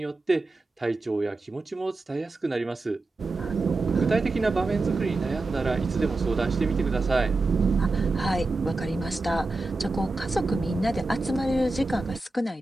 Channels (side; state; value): left; quieter; 3.2 dB